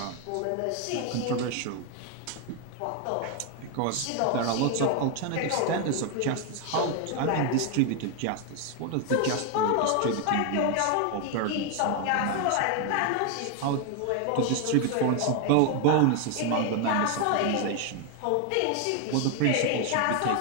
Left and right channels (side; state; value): both; different; correlation 0.01